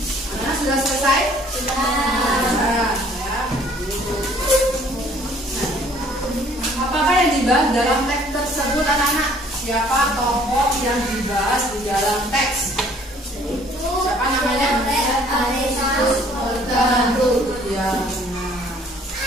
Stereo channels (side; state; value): both; normal; correlation 0.57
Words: Sudah selesai? Sudah. Apakah yang dibahas dalam teks tersebut anak-anak? Siapa tokoh yang dibahas di dalam teks? Siapa namanya? Ya.